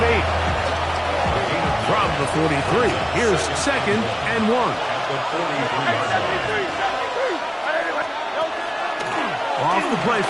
From the 43, here's 2nd and 1. Off the play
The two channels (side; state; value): both; identical; correlation 1.00